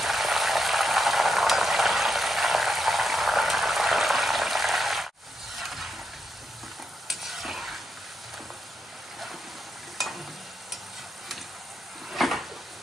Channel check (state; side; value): normal; both; correlation 0.83